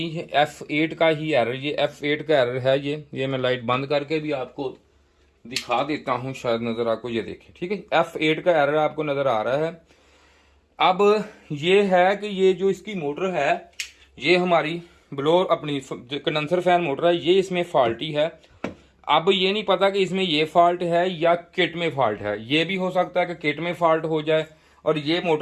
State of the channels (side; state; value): both; identical; correlation 1.00